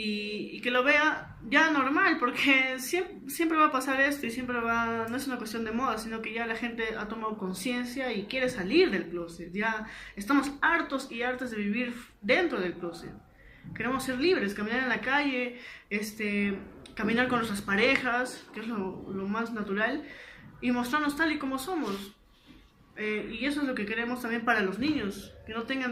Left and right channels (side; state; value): both; identical; correlation 1.00